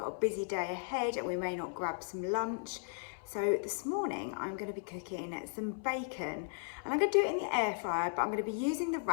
a busy day ahead and we may not grab some lunch. So this morning I'm going to be cooking some bacon and I'm going to do it in the air fryer, but I'm going to be using the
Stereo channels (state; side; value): silent; right; 54 dB below the other